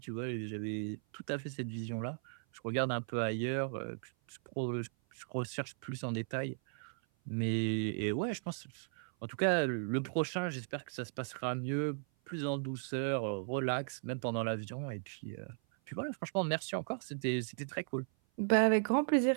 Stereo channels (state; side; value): silent; left; 53 dB below the other